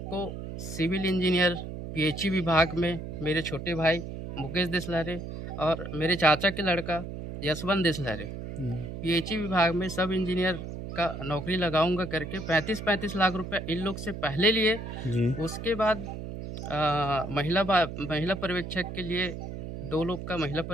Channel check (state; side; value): noise; right; hum, 8 dB below the sound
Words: को सिविल इंजीनियर पीएचई विभाग में मेरे छोटे भाई मुकेश देसलहरे और मेरे चाचा के लड़का यशवंत देसलहरे पीएचई विभाग में सब इंजीनियर का नौकरी लगाऊंगा करके 35 लाख रुपए इन लोग से पहले लिए। उसके बाद महिला पर्यवेक्षक के लिए 2 लोग का महिला